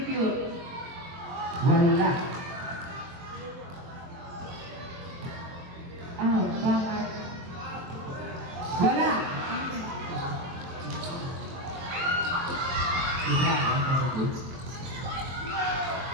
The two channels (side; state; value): left; late; 23 ms